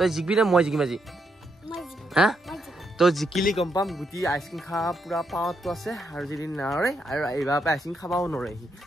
জিকিবি নে মই জিকিম আজি? হা তই জিকিলি গম পাম গুটি আইসক্ৰীম খোৱা পুৰা পাৱাৰটো আছে, আৰু যদি নৰে আৰু এইবাৰ পৰা আইসক্ৰীম খাবাও নৰে সি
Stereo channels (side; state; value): both; normal; correlation 0.79